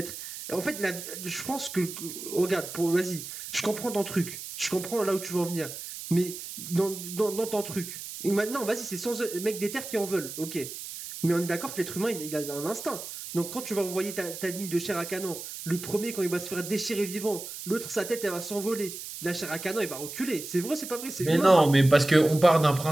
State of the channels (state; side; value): noise; right; hiss, 10 dB below the sound